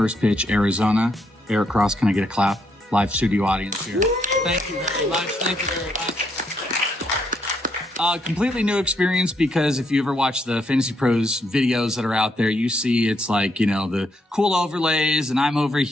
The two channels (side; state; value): both; normal; correlation 0.75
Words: Pitch, Arizona. Eric Cross, can I get a clap? Live studio audience here. Thank you very much. Thank you very much. Completely new experience, because if you ever watch the Fantasy Pros videos that are out there, you see it's like, you know, the cool overlays, and I'm over